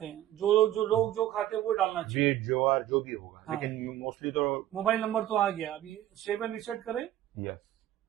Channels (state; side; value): quieter; left; 13.0 dB